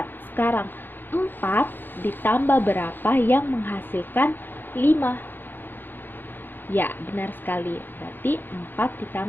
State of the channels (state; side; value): late; right; 0.095 ms